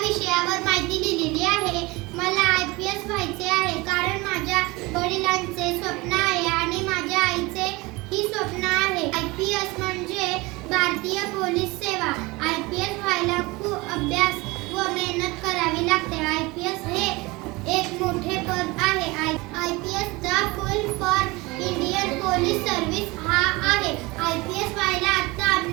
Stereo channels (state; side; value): quieter; left; 23.2 dB